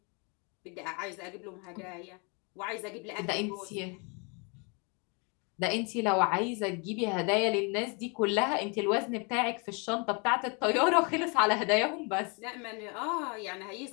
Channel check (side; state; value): right; quieter; 33.2 dB